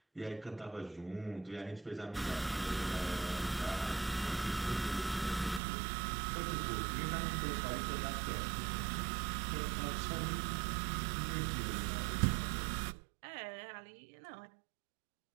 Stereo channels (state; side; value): drops out; left; at 5.6 s